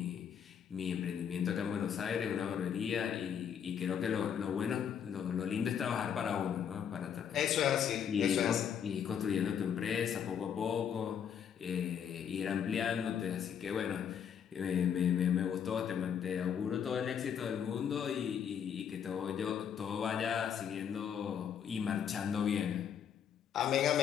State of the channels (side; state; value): right; quieter; 8.2 dB